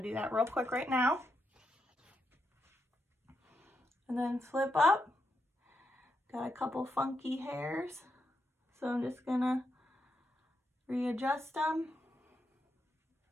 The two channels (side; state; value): both; normal; correlation 0.83